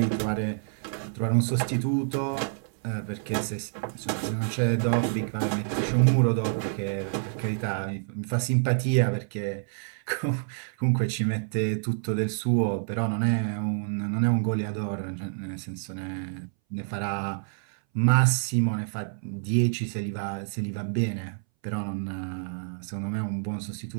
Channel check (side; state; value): left; silent; 60 dB below the other